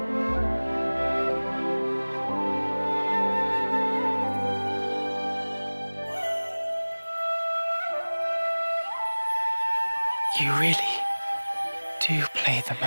You really do play the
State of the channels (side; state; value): both; inverted; correlation -1.00